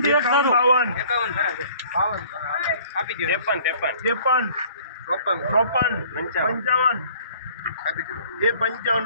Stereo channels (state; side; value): inverted; both; correlation -0.53